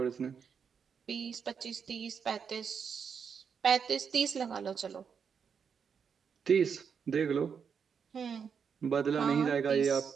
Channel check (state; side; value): quieter; left; 6.6 dB